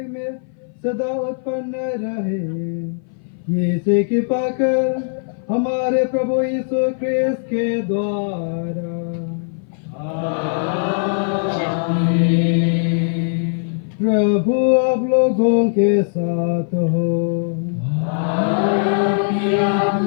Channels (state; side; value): silent; right; 58 dB below the other